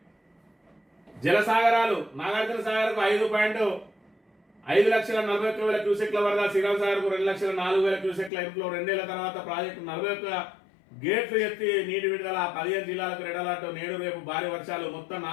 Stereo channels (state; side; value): drops out; right; at 8.3 s